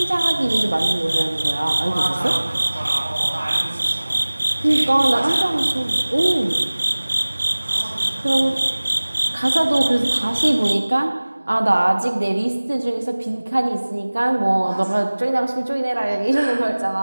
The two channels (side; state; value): both; inverted; correlation -1.00